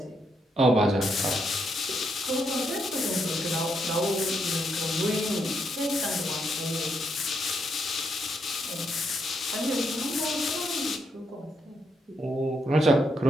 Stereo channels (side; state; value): both; normal; correlation 0.78